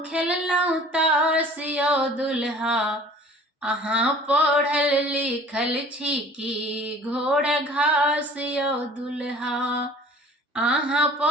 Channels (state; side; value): normal; both; correlation 0.48